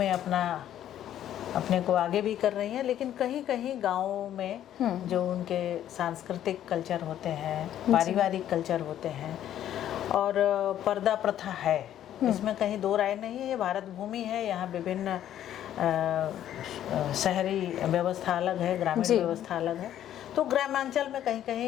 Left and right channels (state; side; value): quieter; right; 11.3 dB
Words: अपने को आगे भी कर रही हैं, लेकिन कहीं कहीं गाँवों में जो उनके सांस्कृतिक कल्चर होते हैं, पारिवारिक कल्चर होते हैं और पर्दा प्रथा है, इसमें कहीं दो राय नहीं है। ये भारत भूमि है, यहाँ विभिन्न शहरी व्यवस्था अलग है, ग्रामीण व्यवस्था अलग है, तो ग्रामांचल में कहीं